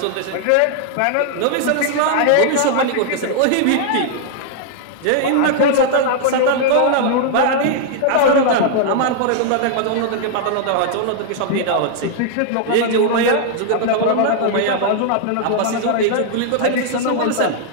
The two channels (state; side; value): different; both; correlation -0.01